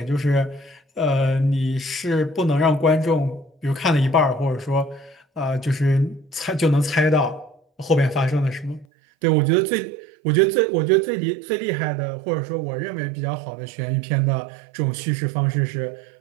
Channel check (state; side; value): drops out; left; at 8.8 s